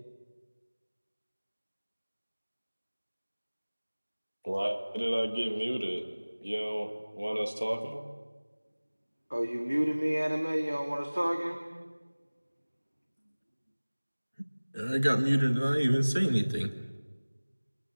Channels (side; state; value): both; inverted; correlation -1.00